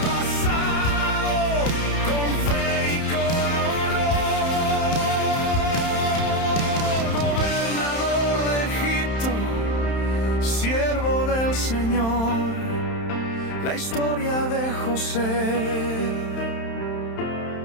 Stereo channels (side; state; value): right; late; 31 ms